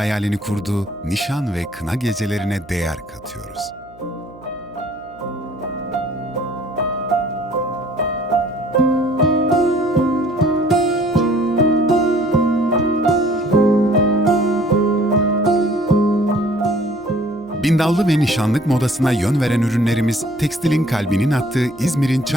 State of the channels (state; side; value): noise; right; hum, 24 dB below the sound